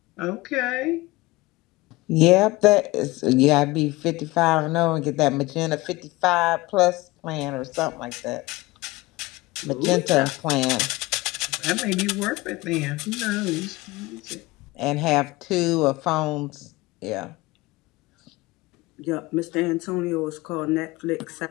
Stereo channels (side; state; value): right; quieter; 21.1 dB